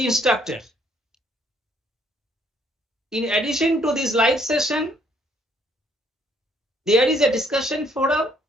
instructor. In addition to this live session, there is a discussion forum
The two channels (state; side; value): normal; both; correlation 0.66